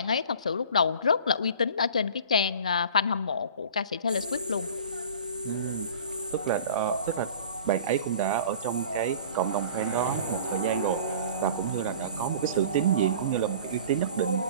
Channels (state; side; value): inverted; both; correlation -0.43